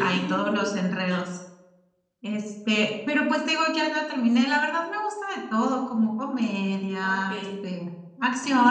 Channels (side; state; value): both; identical; correlation 1.00